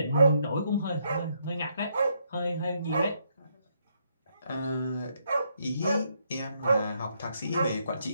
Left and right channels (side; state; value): both; inverted; correlation -0.75